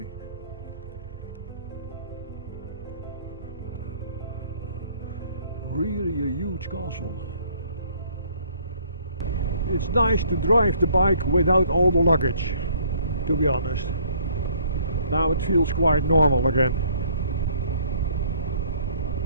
Really a huge castle. It's nice to drive the bike without all the luggage, to be honest. Now it feels quite normal again.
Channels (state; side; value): inverted; both; correlation -0.59